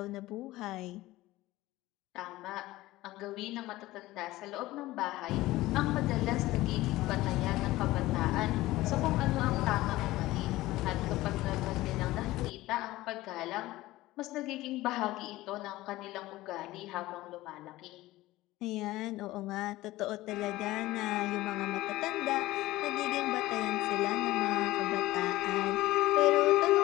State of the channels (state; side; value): quieter; right; 17.6 dB